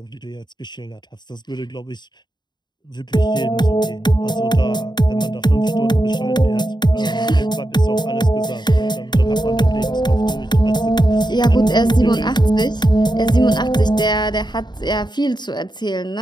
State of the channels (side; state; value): right; late; 0.21 ms